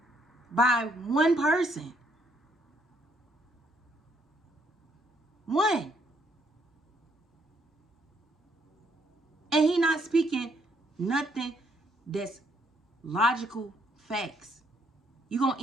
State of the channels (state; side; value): normal; both; correlation 0.70